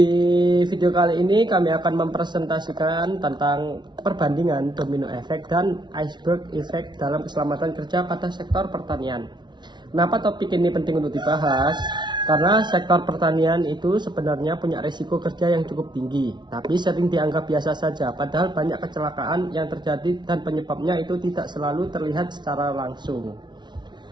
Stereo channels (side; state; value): left; late; 0.21 ms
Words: video kali ini kami akan mempresentasikan tentang perbandingan domino effect dan iceberg effect dalam keselamatan kerja pada sektor pertanian. Kenapa topik ini penting untuk dibahas? Karena sektor pertanian itu sebenarnya punya risiko kerja yang cukup tinggi, tapi sering dianggap biasa saja, padahal banyak kecelakaan yang terjadi dan penyebabnya itu tidak selalu terlihat secara langsung.